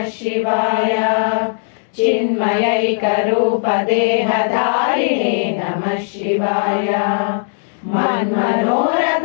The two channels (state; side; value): silent; right; 68 dB below the other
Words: शिवाय चिन्मयैक रूप देहधारिणे नमः शिवाय